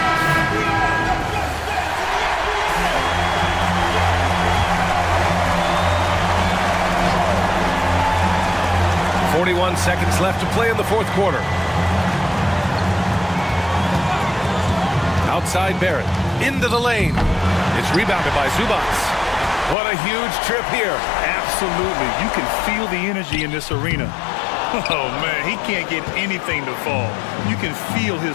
.41 seconds left to play in the fourth quarter. Outside Barrett. Into the lane. It's rebounded by Zubats. What a huge trip here. Absolutely. You can feel the energy in this arena. Oh, man, he can't get anything to fall. You can feel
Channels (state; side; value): drops out; right; at 19.8 s